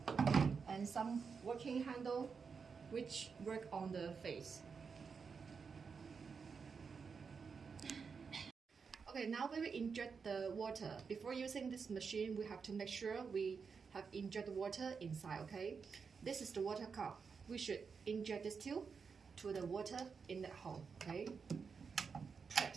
And some working handle which work on the face. Okay, now we will inject the water. Before using this machine, we have to make sure we have inject water inside, okay? This is the water cup. We should inject this tube to the water in that hole, okay?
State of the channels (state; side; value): quieter; left; 5.6 dB